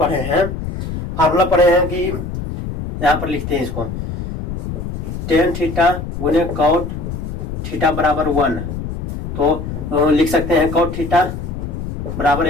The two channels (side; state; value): left; noise; rumble, 6 dB below the sound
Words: हैं कि यहाँ पर लिखते हैं इसको, टेन थीटा गुने कॉट थीटा बराबर 1, तो लिख सकते हैं कॉट थीटा बराबर